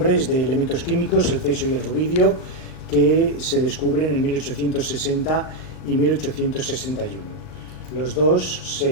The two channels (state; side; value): late; right; 38 ms